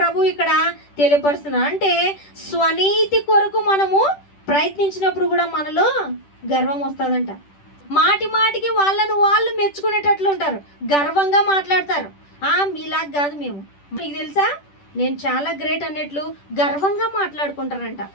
ఇక్కడ తెలియపరుస్తున్నారు. అంటే స్వనీతి కొరకు మనము ప్రయత్నించినప్పుడు కూడా మనలో గర్వం వస్తుందంట. మాటి మాటికి వాళ్ళను వాళ్ళు మెచ్చుకునేటట్లు ఉంటారు, గర్వంగా మాట్లాడతారు. మీలాగా కాదు మేము, మీకు తెలుసా నేను చాలా గ్రేట్ అన్నట్లు గర్వంగా మాట్లాడుకుంటారంట.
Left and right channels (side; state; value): right; late; 10 ms